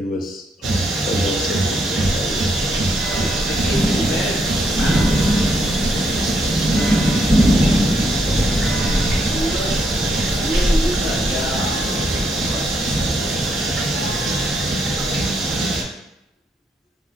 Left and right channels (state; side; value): normal; both; correlation 0.75